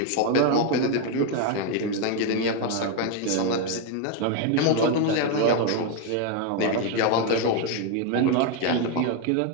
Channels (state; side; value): different; both; correlation 0.01